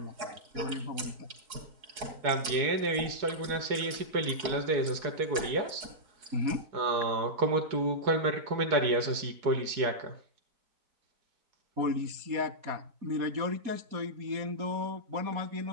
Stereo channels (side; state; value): left; late; 4.6 ms